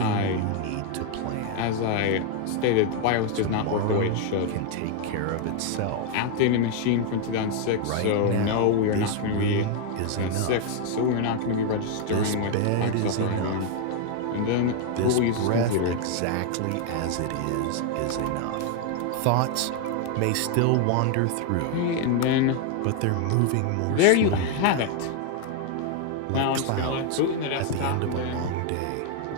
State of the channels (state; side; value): different; both; correlation 0.01